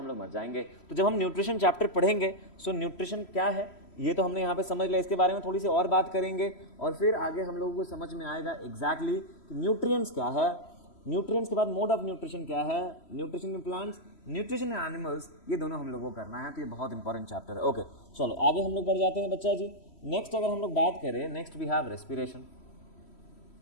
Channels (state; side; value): late; right; 3.1 ms